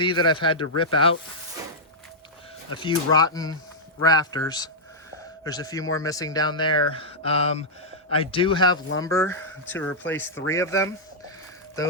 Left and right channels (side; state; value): both; normal; correlation -0.07